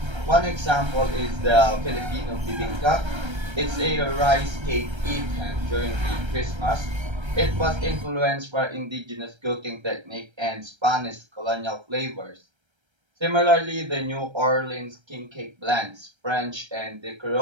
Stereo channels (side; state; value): left; late; 1.3 ms